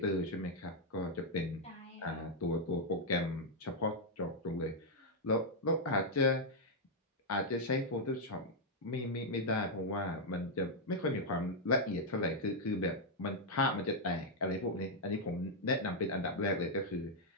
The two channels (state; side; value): normal; both; correlation -0.03